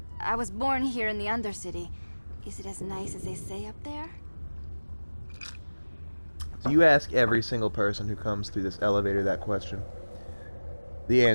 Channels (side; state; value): both; inverted; correlation -1.00